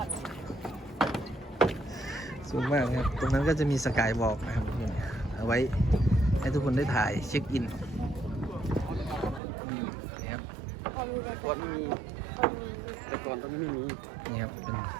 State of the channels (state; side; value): drops out; left; at 9.4 s